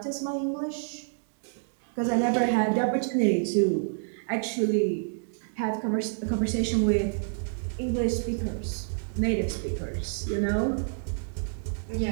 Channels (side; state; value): left; silent; digital silence